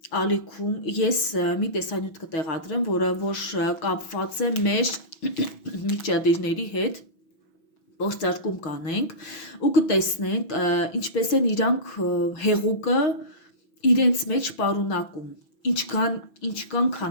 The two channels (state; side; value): late; right; 6.1 ms